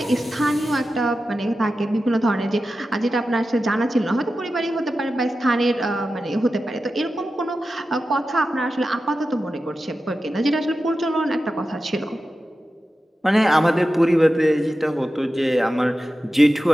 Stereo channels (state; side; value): normal; both; correlation 0.92